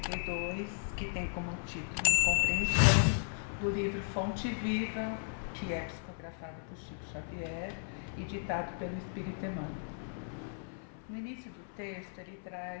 que tem como título Incompreensão, do livro Fonte Viva, que é psicografado por Chico Xavier e ditado pelo Espírito Emmanuel. No início do texto, ele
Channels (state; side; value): silent; right; 54 dB below the other